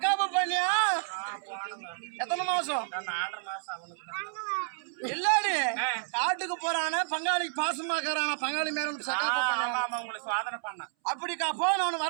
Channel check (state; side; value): silent; left; 58 dB below the other